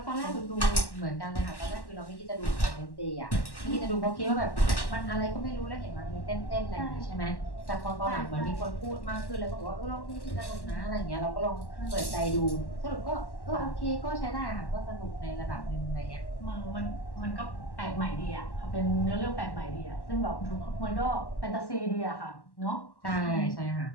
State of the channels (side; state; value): right; late; 1.1 ms